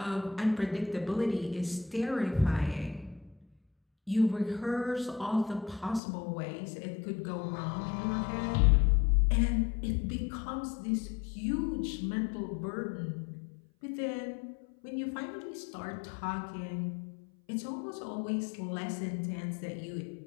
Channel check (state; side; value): drops out; right; at 6.0 s